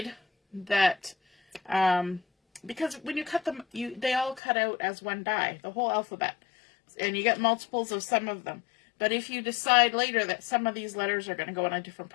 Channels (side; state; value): right; drops out; at 4.4 s